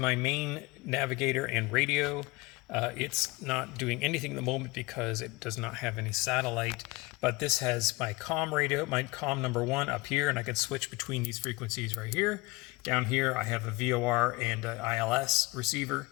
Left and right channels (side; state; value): right; quieter; 23.1 dB